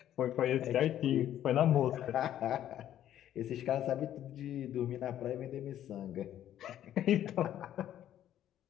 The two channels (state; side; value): quieter; right; 11.4 dB